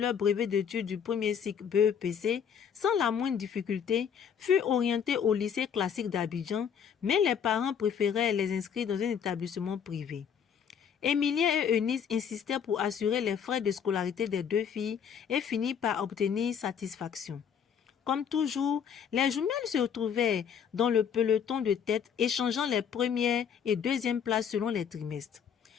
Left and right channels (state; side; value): quieter; right; 7.7 dB